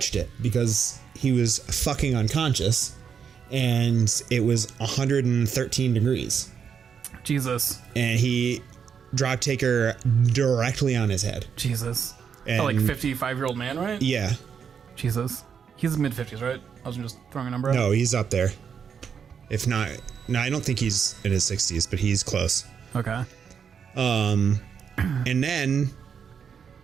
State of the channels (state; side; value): quieter; left; 7.0 dB